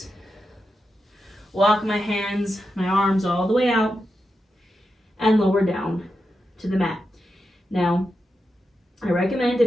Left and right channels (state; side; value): normal; both; correlation 0.88